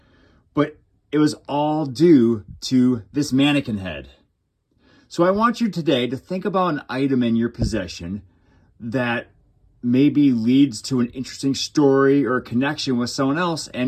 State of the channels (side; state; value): both; identical; correlation 1.00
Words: but it was all due to this mannequin head. So I want you today to think about an item in your possession that maybe leads to an interesting story or a connection with someone else,